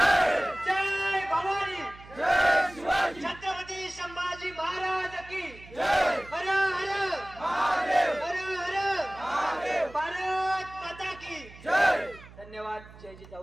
जय भवानी जय शिवाजी. छत्रपती संभाजी महाराज की जय. हर हर महादेव. हर हर महादेव. भारत माता की जय. धन्यवाद. जय जिजाऊ.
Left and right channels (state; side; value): noise; right; hum, 19 dB below the sound